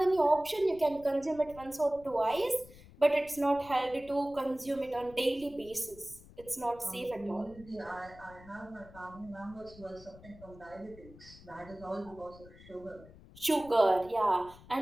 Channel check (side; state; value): left; noise; rumble, 20 dB below the sound